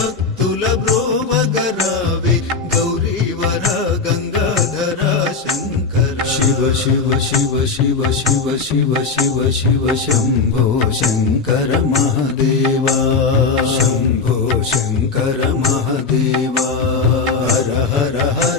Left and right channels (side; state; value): right; quieter; 4.6 dB